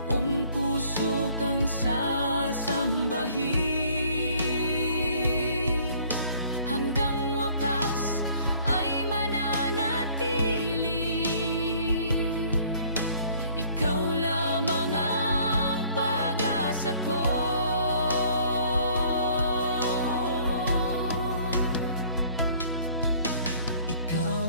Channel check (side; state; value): both; inverted; correlation -0.57